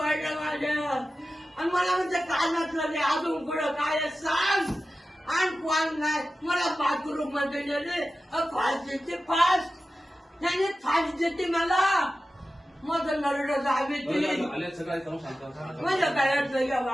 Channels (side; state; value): both; normal; correlation 0.94